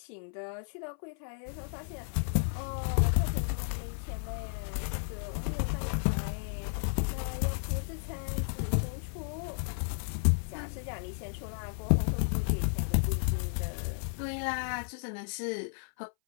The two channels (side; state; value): right; silent; 56 dB below the other